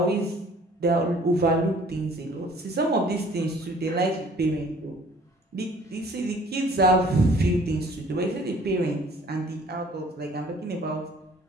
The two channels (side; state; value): both; normal; correlation 0.54